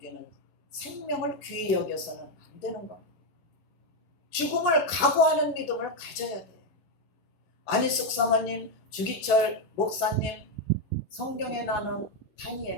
생명을 귀히 여겨서는 안 되는 겁니다. 죽음을 각오하는 믿음을 가져야 돼요. 안희숙 사모님, 주기철 목사님, 성경에 나오는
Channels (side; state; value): right; late; 11 ms